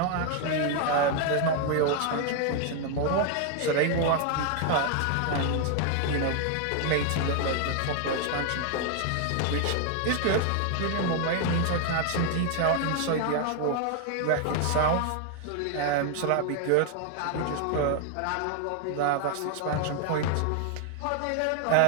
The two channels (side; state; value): both; different; correlation 0.00